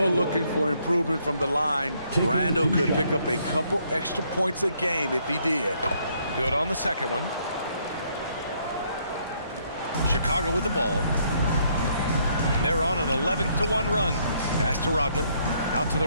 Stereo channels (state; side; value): inverted; both; correlation -0.70